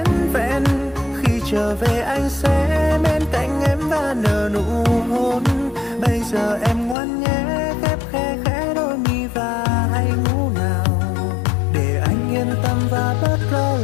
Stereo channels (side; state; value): right; drops out; at 7.0 s